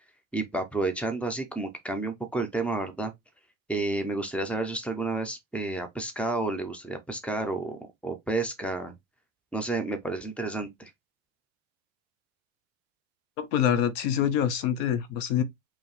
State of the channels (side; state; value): both; normal; correlation 0.36